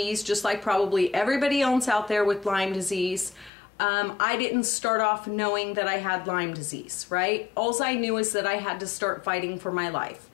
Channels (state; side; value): drops out; right; at 3.5 s